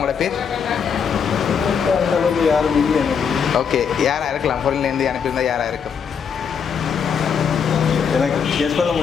பேர்? அந்த அளவுக்கு யாரும் இல்லை எனக்கு. ஓகே, யாராக இருக்கலாம்? ஃபொரின்லேருந்து அனுப்பியிருந்தால் யாராக இருக்கும்? எனக்கு கெஸ் பண்ண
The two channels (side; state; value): right; quieter; 6.8 dB